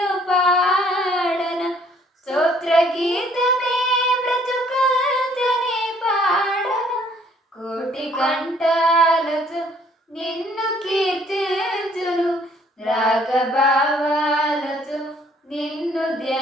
పాడన, స్తోత్ర గీతమే బ్రతుకంతనే పాడన. కోటి కంఠాలతో నిన్ను కీర్తించును, రాగభావాలతో నిన్ను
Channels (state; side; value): normal; both; correlation 0.61